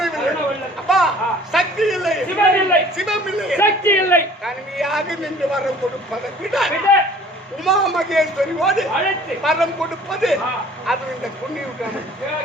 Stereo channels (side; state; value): both; normal; correlation 0.51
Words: அப்பா சக்தி இல்லை, சிவம் இல்லை, சக்தி இல்லை, தனிமையாக நின்று வரம் கொடுப்பதை விட உமா மகேஸ்வரியோடு வரம் கொடுப்பது அது இந்த புண்ணியம்.